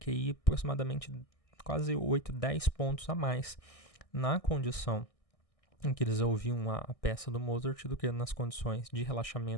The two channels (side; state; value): right; late; 1.6 ms